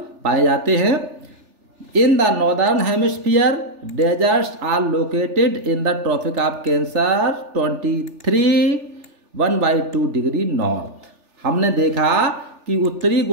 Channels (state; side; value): late; left; 3.4 ms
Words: पाए जाते हैं। In the northern hemisphere deserts are located in the Tropic of Cancer 23 degree north. हमने देखा कि उत्तरी